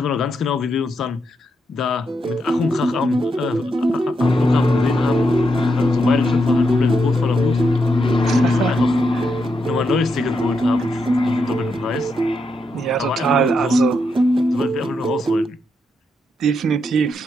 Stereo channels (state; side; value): normal; both; correlation 0.82